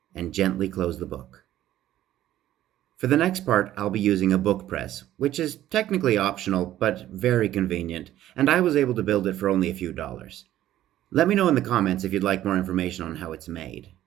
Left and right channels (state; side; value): quieter; left; 13.2 dB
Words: and gently close the book. For the next part, I'll be using a book press, which is technically optional but very convenient, and I was able to build it for only a few dollars. Let me know in the comments if you'd like more information on how it's made.